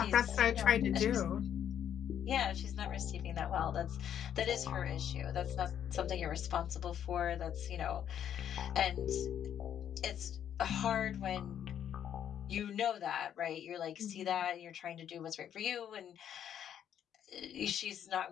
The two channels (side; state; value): right; quieter; 9.6 dB